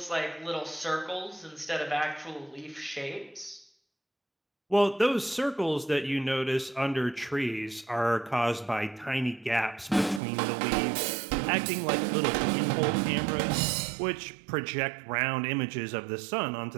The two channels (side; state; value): left; drops out; at 10.2 s